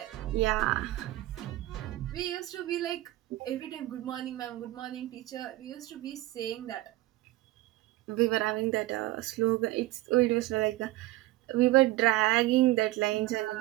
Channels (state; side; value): quieter; left; 17.6 dB